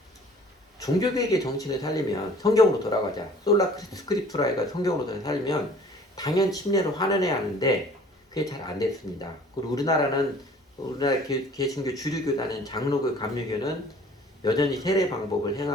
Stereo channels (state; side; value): normal; both; correlation 0.51